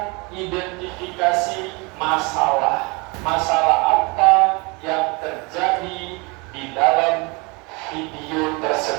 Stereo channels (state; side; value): quieter; left; 28.4 dB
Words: identifikasi masalah. Masalah apa yang terjadi di dalam video